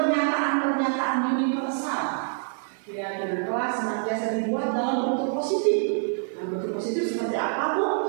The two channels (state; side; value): silent; left; digital silence